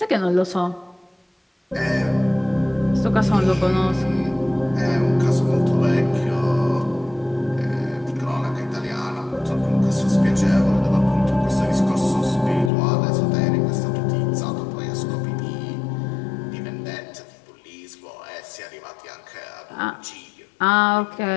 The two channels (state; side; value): drops out; right; at 12.7 s